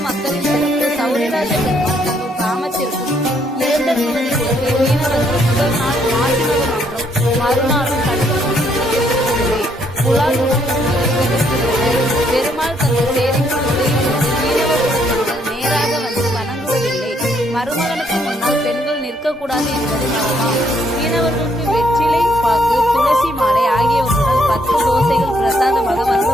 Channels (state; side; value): normal; both; correlation 0.70